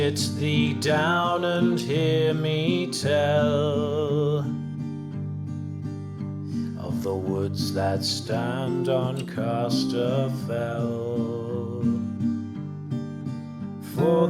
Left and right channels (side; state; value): both; identical; correlation 1.00